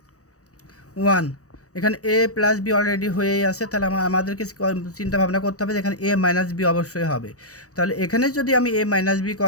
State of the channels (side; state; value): right; late; 0.66 ms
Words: 1। এখানে a + b অলরেডি হয়েই আছে, তাহলে আমাদেরকে চিন্তা ভাবনা করতে হবে যে এখানে a - b অবশ্যই হবে। তাহলে এখানে যদি আমি a - b